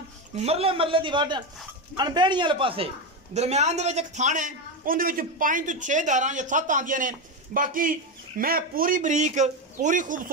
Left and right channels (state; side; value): normal; both; correlation 0.13